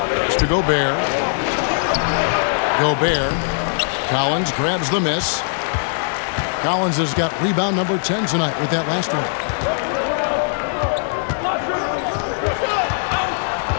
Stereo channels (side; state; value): right; silent; digital silence